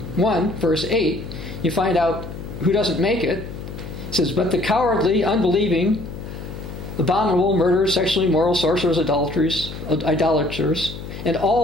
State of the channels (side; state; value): left; noise; hum, 10 dB below the sound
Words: verse 8, you find out who doesn't make it. It says, but the cowardly, unbelieving, abominable, murderers, sexually immoral, sorcerers, idolaters, and